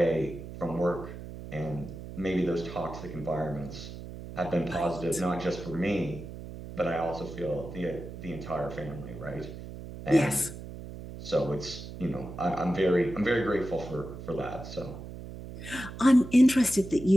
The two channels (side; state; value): right; noise; hum, 11 dB below the sound